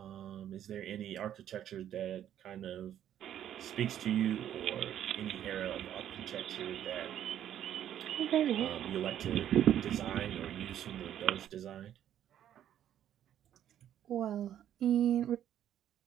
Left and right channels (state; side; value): quieter; left; 10.7 dB